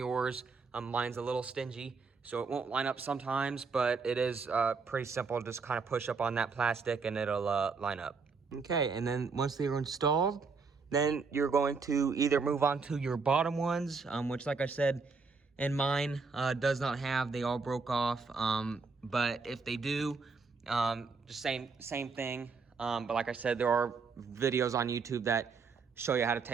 Mine's a little stingy, so it won't line up sometimes, but it is pretty simple. Just kind of push up on that plastic and it'll line up. Okay, and then once they are installed, then you're going to either move on to your bottom ones, which, like I said, in mine does not have. They all broke off. But if they do, just same thing. But like I said, there are videos on YouTube that show you how to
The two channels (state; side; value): quieter; left; 4.7 dB